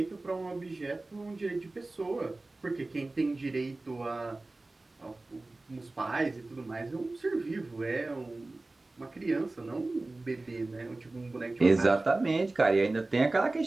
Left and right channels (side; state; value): left; quieter; 3.1 dB